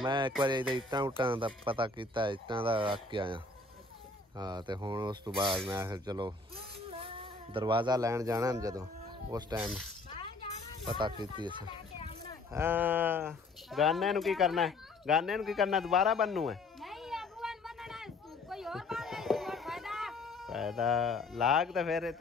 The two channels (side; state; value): right; quieter; 3.4 dB